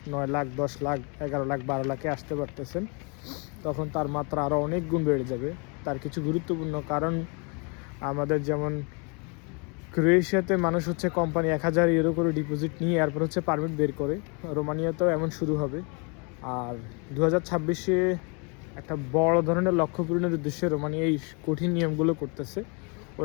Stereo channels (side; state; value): right; quieter; 33.7 dB